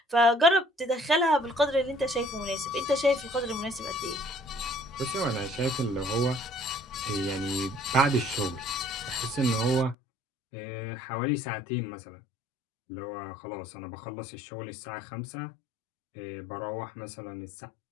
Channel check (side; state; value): right; drops out; at 10.0 s